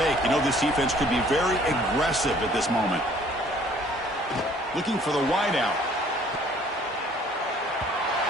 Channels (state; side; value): normal; both; correlation 0.57